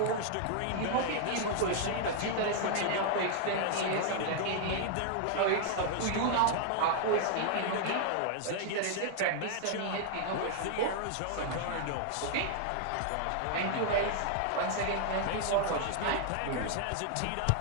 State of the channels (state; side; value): different; both; correlation 0.00